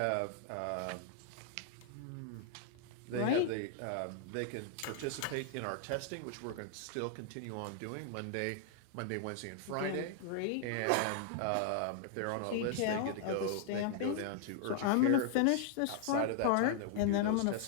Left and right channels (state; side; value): different; both; correlation 0.00